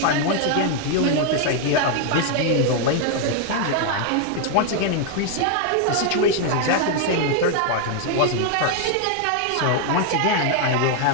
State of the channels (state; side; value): different; both; correlation 0.00